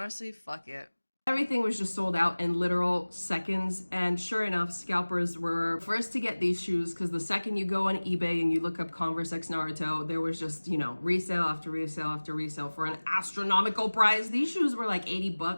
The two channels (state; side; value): inverted; both; correlation -1.00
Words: fuck it. Everything was just sold out in literal seconds, and sure enough, scalpers were first to get these shoes, because the second you go on eBay and you look up Converse X Naruto, there was just, you know, resale after resale after resale for an astronomical price. These shoes were like 80